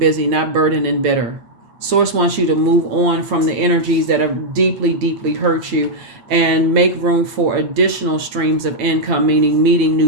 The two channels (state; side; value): late; left; 8.9 ms